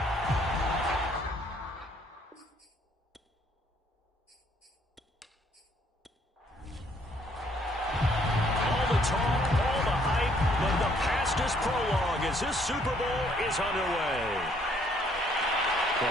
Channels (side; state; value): both; normal; correlation 0.65